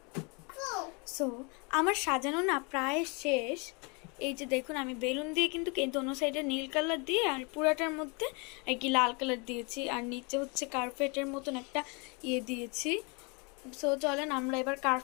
সো আমার সাজানো না প্রায় শেষ। এই যে দেখুন, আমি বেলুন দিয়ে কিন্তু অন্য সাইডে নীল কালার দিয়ে আর পুরাটার মধ্যে আর কি লাল কালার দিয়েছি, আর নিচে হচ্ছে কার্পেটের মতন একটা দিয়েছি। সো চলেন আমরা এবার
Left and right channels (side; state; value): right; quieter; 31.6 dB